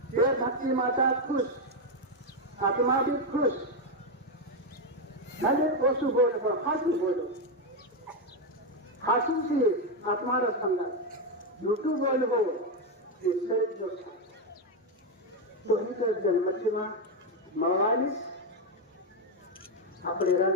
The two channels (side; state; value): both; normal; correlation 0.05